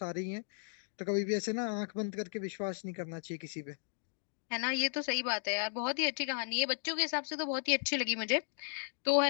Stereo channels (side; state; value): right; silent; digital silence